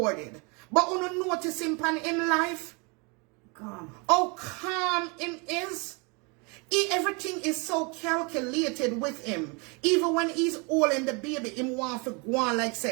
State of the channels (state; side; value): quieter; left; 31.3 dB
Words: But when you notice him pan in life, calm. How calm him is. Everything is so calculated with him. Even when he's holding the baby, him want to go on like